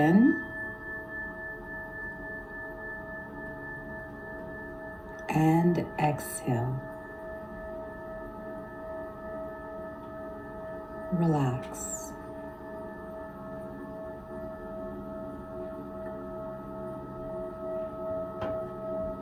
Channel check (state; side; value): identical; both; correlation 1.00